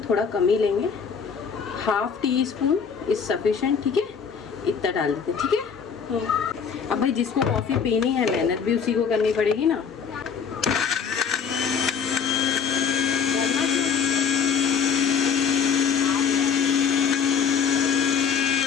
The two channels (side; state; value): right; quieter; 6.5 dB